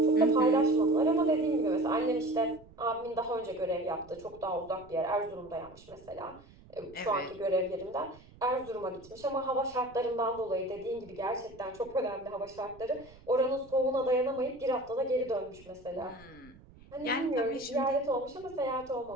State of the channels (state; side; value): noise; right; rumble, 23 dB below the sound